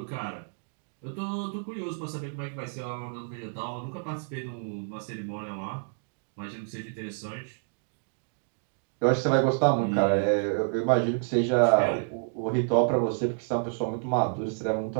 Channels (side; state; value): left; silent; digital silence